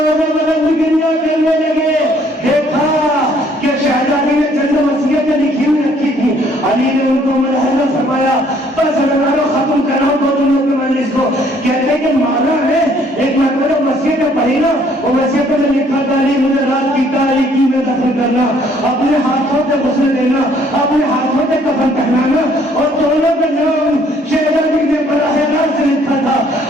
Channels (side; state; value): both; normal; correlation 0.62